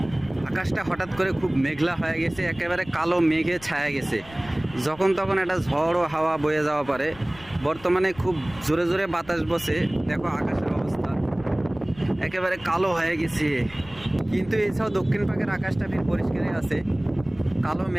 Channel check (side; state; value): left; noise; rumble, 20 dB below the sound